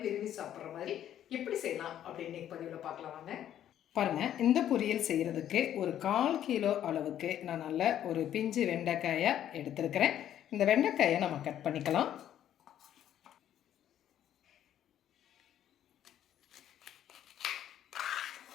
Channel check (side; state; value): right; quieter; 11.0 dB